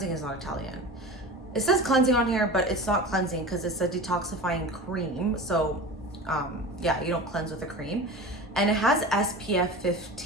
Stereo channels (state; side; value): normal; both; correlation 0.32